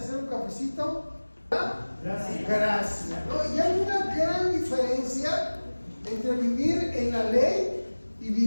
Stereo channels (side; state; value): both; inverted; correlation -1.00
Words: un cafecito? Gracias. Gracia, ¿no? Y hay una gran diferencia entre vivir en la ley y